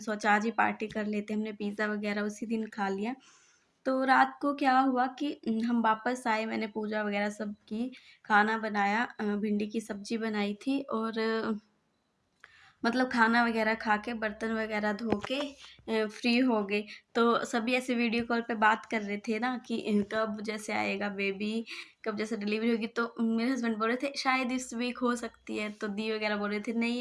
सोचा आज ही पार्टी कर लेते हैं। हमने पिज़्ज़ा वगैरह उसी दिन खा लिया। तो रात को क्या हुआ कि हम वापस आए, मैंने पूजा वगैरह सब की, खाना बनाया, भिंडी की सब्ज़ी बनाई थी, और मतलब खाना वगैरह खा के बर्तन वगैरह धो के फ्री हो गए। तो सभी ऐसे वीडियो कॉल पे बात कर रहे थे ना कि कब जैसे आएगा बेबी, कब जैसे डिलीवरी होगी। तो मेरे हस्बैंड बोल रहे थे शायद इस वीक हो सकती है, तो दी वगैरह बोल रहे थे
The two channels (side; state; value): both; identical; correlation 1.00